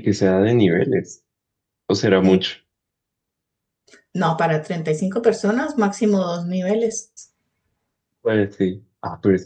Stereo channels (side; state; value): both; identical; correlation 1.00